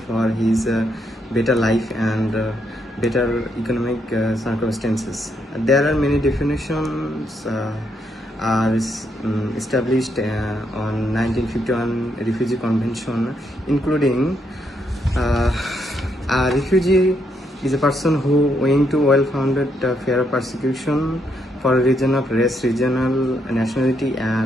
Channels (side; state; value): both; normal; correlation 0.76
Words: for his better life and better economic circumstances. There are many definitions are established on 1951 Refugee Convention, including a refugee is a person who, owing to well-founded fear of persecution for a reason of race, regional nationality,